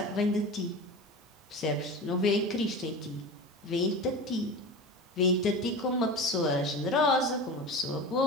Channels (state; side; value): normal; both; correlation 0.30